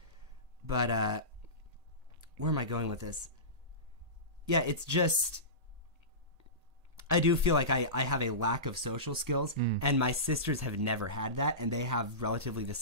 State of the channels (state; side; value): late; left; 1.8 ms